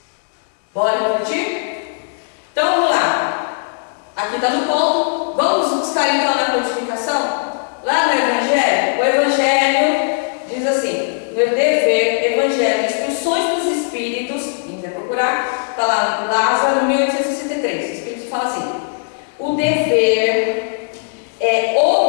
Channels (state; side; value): silent; right; 67 dB below the other